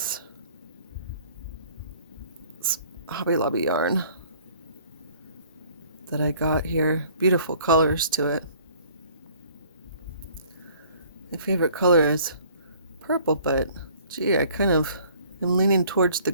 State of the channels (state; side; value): inverted; both; correlation -0.55